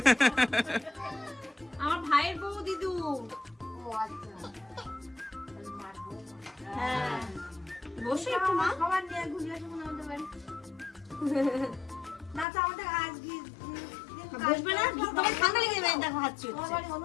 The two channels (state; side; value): drops out; right; at 12.5 s